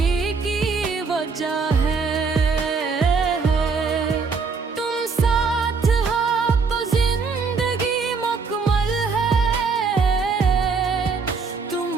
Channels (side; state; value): left; quieter; 4.9 dB